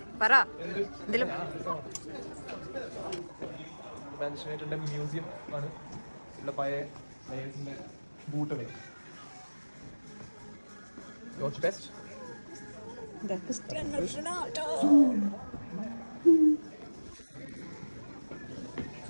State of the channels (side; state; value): both; inverted; correlation -1.00